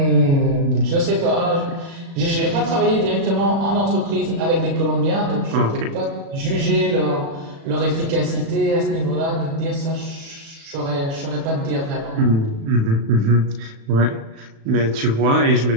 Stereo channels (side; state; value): left; late; 36 ms